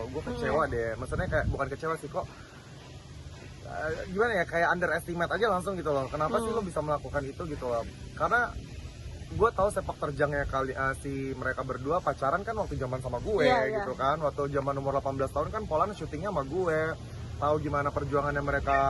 Gue kecewa deh, maksudnya kayak bukan kecewa sih, kok gimana ya, kayak underestimate aja langsung gitu loh. Kenapa sih lo bisa melakukan itu gitu loh. Karena gue tahu sepak terjangnya si mereka berdua pacaran kan waktu zaman sama gue gitu kan. Waktu zaman umur 18 tahun kan Poland syutingnya sama gue. Tahu gimana perjuangannya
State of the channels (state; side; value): identical; both; correlation 1.00